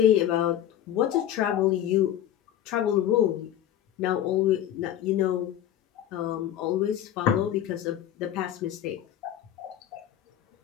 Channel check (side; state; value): right; quieter; 11.3 dB